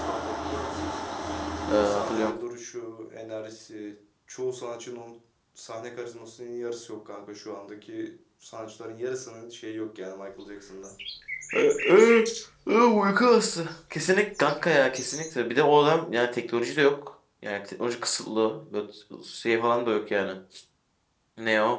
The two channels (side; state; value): both; identical; correlation 1.00